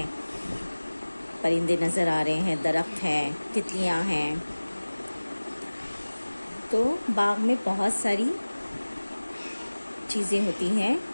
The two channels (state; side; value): inverted; both; correlation -1.00